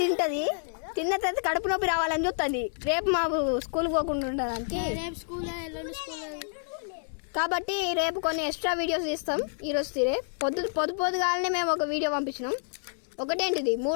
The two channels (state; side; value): silent; right; digital silence